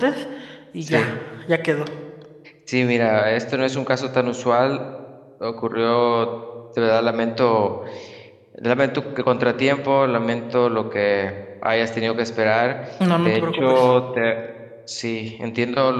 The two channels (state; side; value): identical; both; correlation 1.00